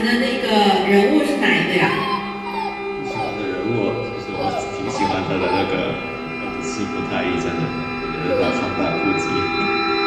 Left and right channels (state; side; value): identical; both; correlation 1.00